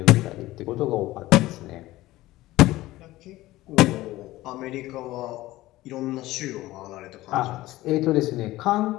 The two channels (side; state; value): right; quieter; 17.3 dB